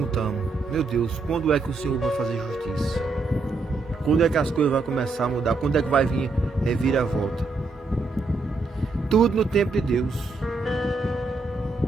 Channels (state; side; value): quieter; left; 3.7 dB